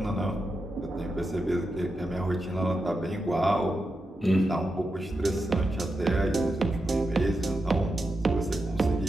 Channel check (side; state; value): both; normal; correlation 0.88